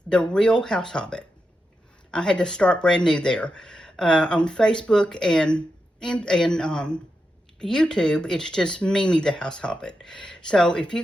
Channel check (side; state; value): both; normal; correlation 0.87